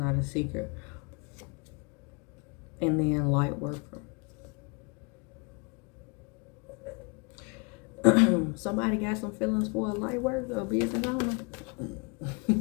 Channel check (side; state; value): right; quieter; 32.9 dB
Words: a secret. And then light worker. Somebody got some feelings for a light worker, a business owner.